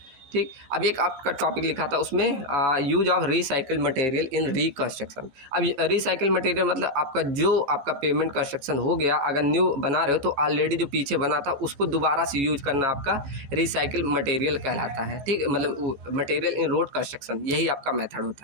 ठीक, अब एक आपका टॉपिक लिखा था उसमें use of recycled material in reconstruction. अब रिसाइकिल मटेरियल मतलब आपका जो आपका पेमेंट कंस्ट्रक्शन हो गया, अगर न्यू बना रहे हो तो ऑलरेडी जो पीछे बना था उसको दोबारा से यूज करना आपका रिसाइकिल मटेरियल कहलाता है। ठीक, मतलब मटेरियल इन रोड कंस्ट्रक्शन, यही आपका मेथड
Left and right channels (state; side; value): late; left; 14 ms